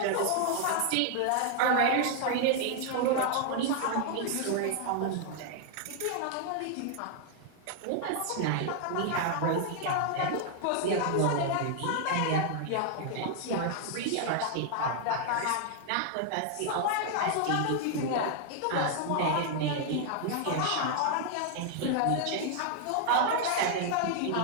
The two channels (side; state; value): both; different; correlation 0.00